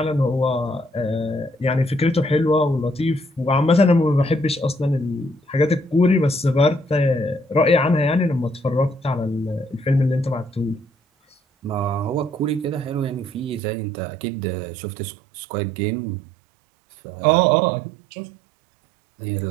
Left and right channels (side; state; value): left; drops out; at 13.6 s